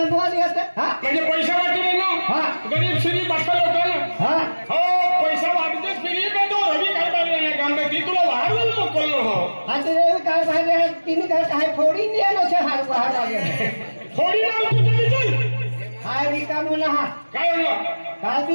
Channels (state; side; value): inverted; both; correlation -1.00